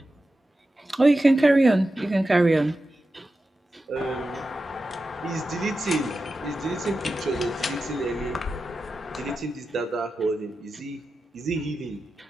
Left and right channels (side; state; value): both; normal; correlation 0.92